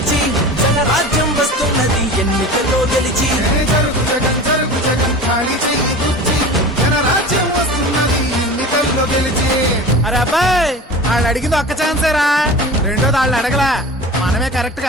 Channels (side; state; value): both; normal; correlation 0.35